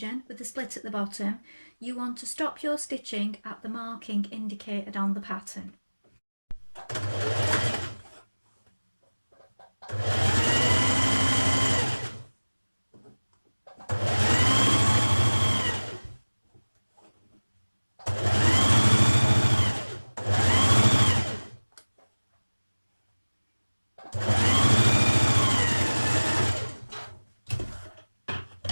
with the split at the bottom, you want to stop your stitching at the marking indicated on the pattern.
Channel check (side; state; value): both; inverted; correlation -1.00